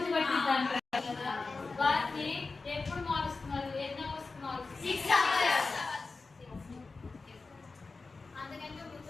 పట్టిద్దంటారు కదా, వాటిని ఎప్పుడు మారుస్తున్నారు, ఎన్ని అవర్స్ మారుస్తున్నారు? అందుకంటే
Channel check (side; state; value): right; quieter; 4.0 dB